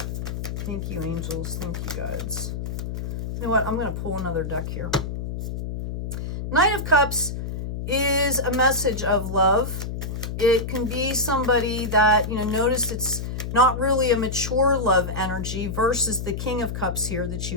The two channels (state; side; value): noise; left; hum, 4 dB below the sound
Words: Thank you, angels. Thank you, guides. You know what? I'm going to pull another deck here. Knight of Cups is a message of love. It can be somebody that, you know, notice it's not really a mature love energy versus the King of Cups here that